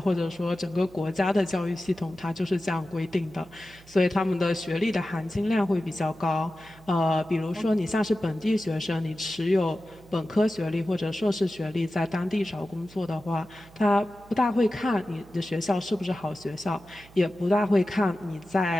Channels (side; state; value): right; noise; hum, 23 dB below the sound